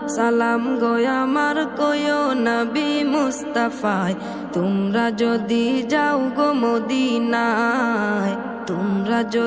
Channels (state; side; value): noise; left; hum, 30 dB below the sound